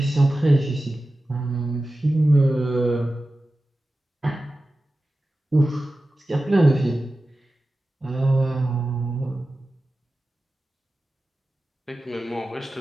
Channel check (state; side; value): normal; both; correlation 0.94